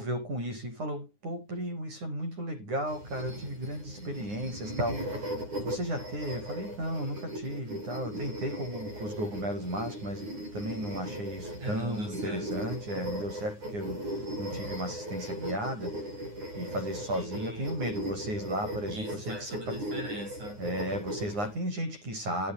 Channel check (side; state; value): left; late; 9.7 ms